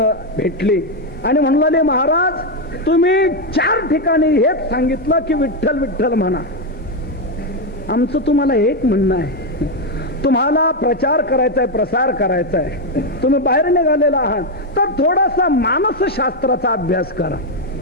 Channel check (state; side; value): normal; both; correlation 0.05